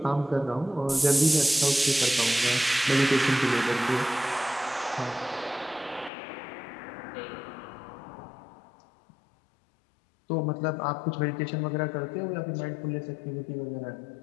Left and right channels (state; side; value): drops out; right; at 6.1 s